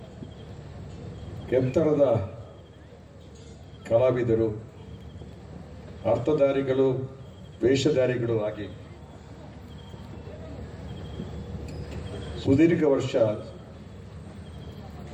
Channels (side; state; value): both; identical; correlation 1.00